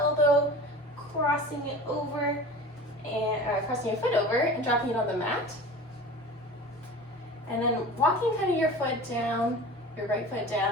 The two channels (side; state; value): both; normal; correlation 0.37